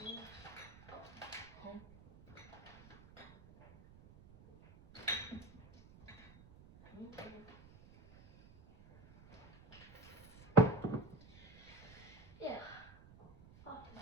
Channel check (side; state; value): right; noise; rumble, 21 dB below the sound